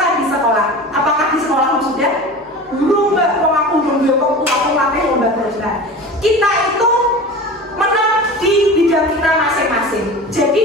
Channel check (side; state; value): both; normal; correlation 0.34